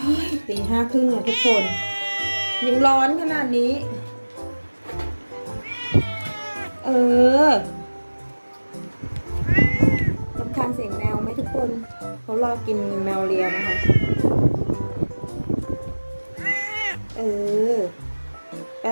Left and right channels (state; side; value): inverted; both; correlation -1.00